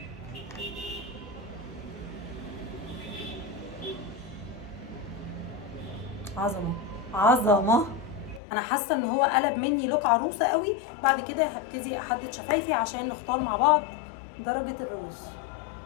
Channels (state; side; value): drops out; right; at 8.4 s